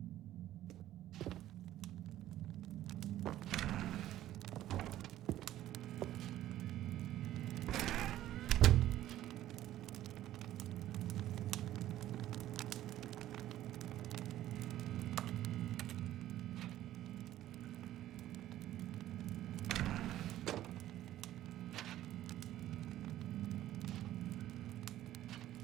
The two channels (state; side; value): quieter; left; 13.5 dB